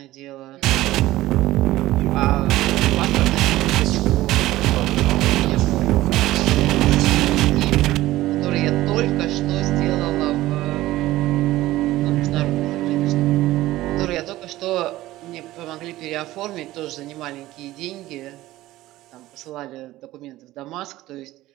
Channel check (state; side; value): quieter; left; 16.4 dB